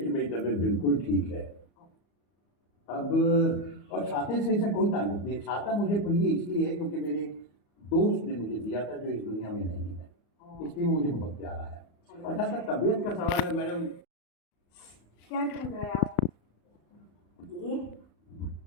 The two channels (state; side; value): late; right; 34 ms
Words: कि मेरी तबीयत बिल्कुल ठीक है अब, और छाते से ऐसा कोई ताल्लुक नहीं। छाता मुझे प्रिय इसलिए है क्योंकि मेरे एक दोस्त ने मुझे दिया था जो इस दुनिया में नहीं है, इसलिए वो मुझे बहुत प्यारा है। और जहाँ तक तबीयत का सवाल है मैडम, क्या ढूंढ रहे हैं आप? ये